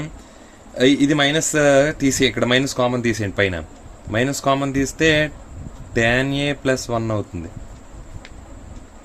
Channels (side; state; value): both; identical; correlation 1.00